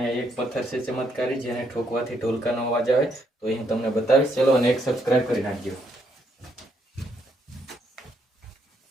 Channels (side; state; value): both; normal; correlation 0.74